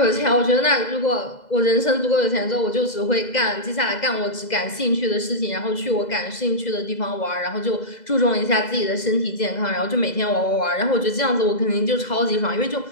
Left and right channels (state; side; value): late; right; 2.0 ms